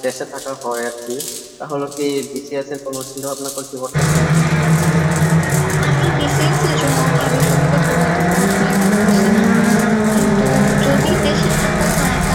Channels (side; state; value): both; identical; correlation 1.00